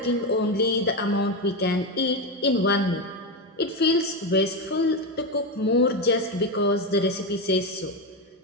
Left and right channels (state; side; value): normal; both; correlation 0.12